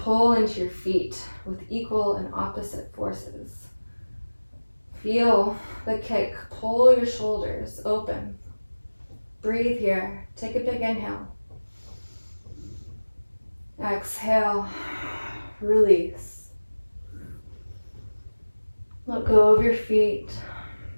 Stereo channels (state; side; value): inverted; both; correlation -1.00